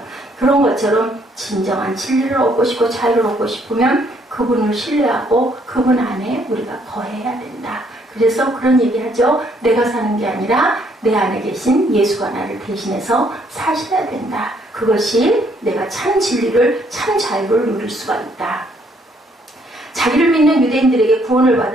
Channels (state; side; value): normal; both; correlation 0.67